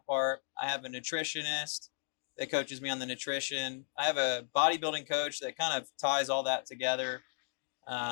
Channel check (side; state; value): right; silent; digital silence